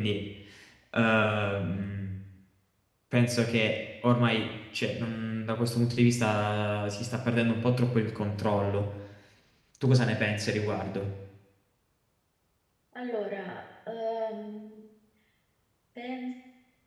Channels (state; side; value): identical; both; correlation 1.00